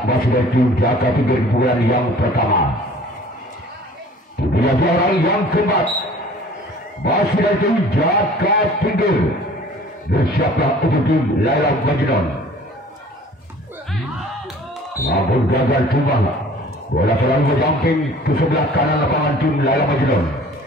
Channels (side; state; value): both; normal; correlation 0.49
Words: Masih dari tim Jaka Tinggi di bulan yang pertama. Bila orang yang keempat. Masih dari tim Jaka Tinggi. Bersiaplah untuk tim Laila Majnun. Namun gagal tumbang. Bola selalu berjumping ke sebelah kanan lapangan tim Laila Majnun.